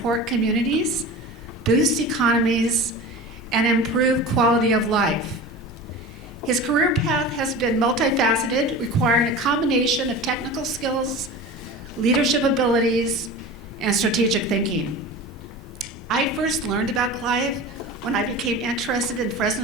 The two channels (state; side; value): normal; both; correlation 0.33